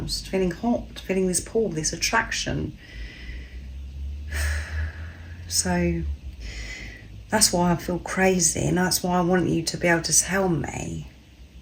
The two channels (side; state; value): both; identical; correlation 1.00